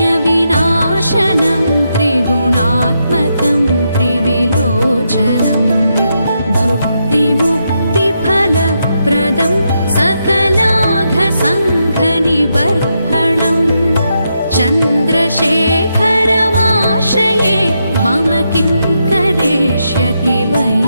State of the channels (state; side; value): inverted; both; correlation -0.82